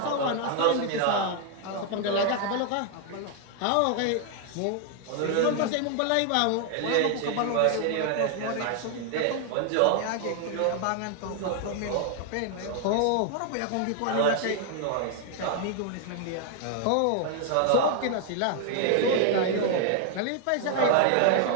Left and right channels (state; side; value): different; both; correlation 0.00